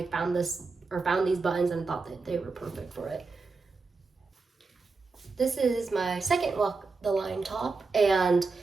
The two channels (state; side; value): quieter; left; 4.1 dB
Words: found these buttons and thought that they were perfect for it. This is my second Walk the Line top, and